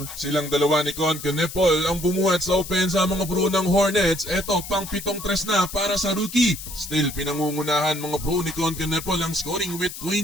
Silang dalawa ni Con Canepol ang bumuhat sa opensa mga bro ng Hornets. Eto pang pitong tres na para sa rookie. Still pinangungunahan mga bro ni Con Canepol ang scoring with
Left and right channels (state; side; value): noise; left; hiss, 11 dB below the sound